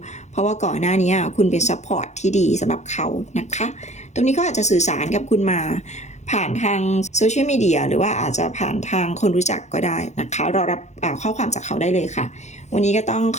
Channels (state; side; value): late; right; 0.33 ms